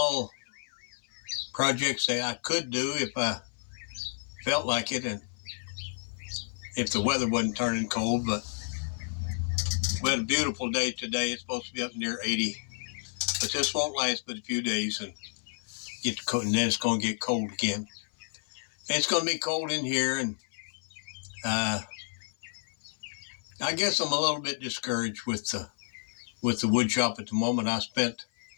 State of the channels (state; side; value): silent; right; 57 dB below the other